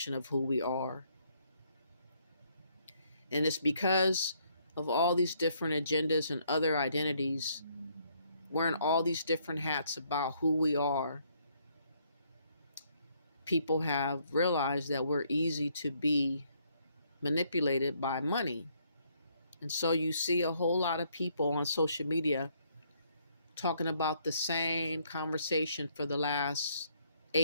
of who we are? And it's because of all these different agendas and other identities, wearing all these different hats about who we are. People have realized that we're easy to be manipulated by money. And so you see a whole lot of people on social media talking about the same conversation for the last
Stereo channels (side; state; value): both; inverted; correlation -0.69